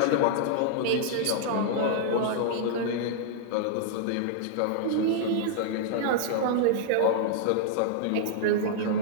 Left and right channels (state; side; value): different; both; correlation -0.01